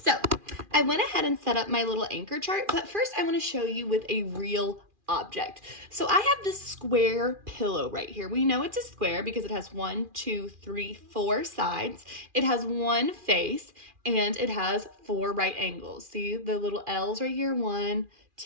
I went ahead and set up my little anchor chart, but first I want to show you with a real object. So I have this square pillow right here. We know it's a square because it has 1, 2, 3, 4 sides. It has one face and it has 4 right angles. See the little L's right here? 1,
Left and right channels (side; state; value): left; late; 2.4 ms